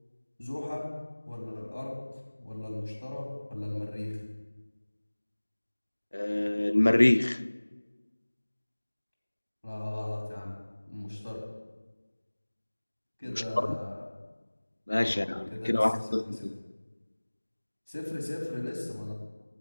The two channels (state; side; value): inverted; both; correlation -1.00